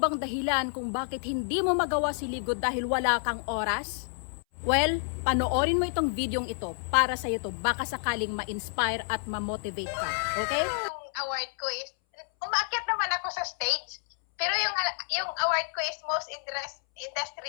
dahilan kung bakit hindi mo magawa si Live Good dahil wala kang oras? Well, panoorin mo itong videong ito para sa iyo to, baka sakaling ma-inspire at ma-motivate ka. Okay? Yung award ko is, umakyat naman ako sa stage, pero yung award ko is most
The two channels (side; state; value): right; silent; 58 dB below the other